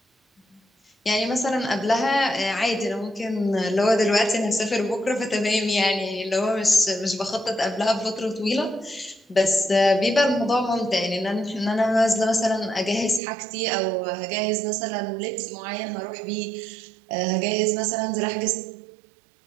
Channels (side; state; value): left; drops out; at 13.2 s